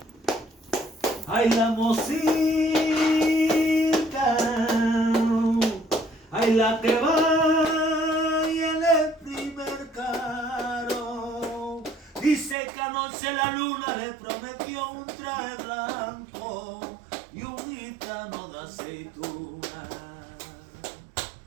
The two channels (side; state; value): left; drops out; at 12.6 s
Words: ay, la mosita, ay, la que va y en el primer carro. Dice que anoche la luna le prometió un traje blanco y un gitano de aceituna.